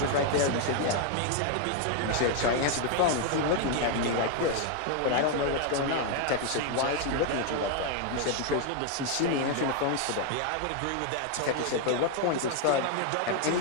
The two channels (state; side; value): different; both; correlation 0.00